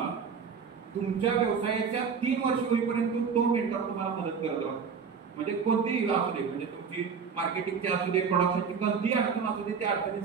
तुमच्या व्यवसायाच्या 3 वर्ष होईपर्यंत तो मेंटर तुम्हाला मदत करत राहतो. म्हणजे कोणतीही असू दे, म्हणजे तुमची मार्केटिंगची असू दे, प्रोडक्शनची कोणतीही अडचण असू दे, त्या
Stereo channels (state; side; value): quieter; left; 6.1 dB